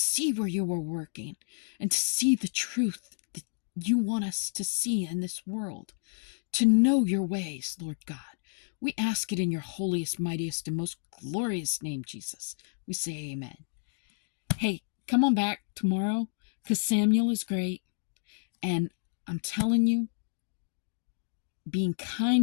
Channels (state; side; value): silent; right; digital silence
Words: where you are working and to see the truth that you want us to see in this world, to know your ways, Lord God. We ask it in your holiest, mightiest, and most glorious name, Jesus. We say amen. Hey, come on back tomorrow, because Samuel is great. And I'm telling you, being